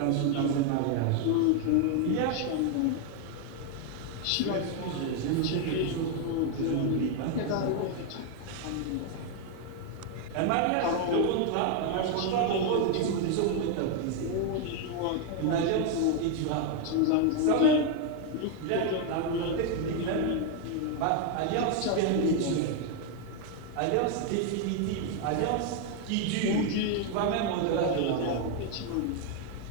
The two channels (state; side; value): different; both; correlation 0.01